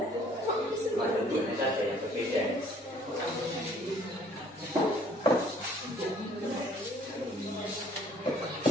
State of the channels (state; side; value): normal; both; correlation 0.58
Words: Cuma tentunya saja.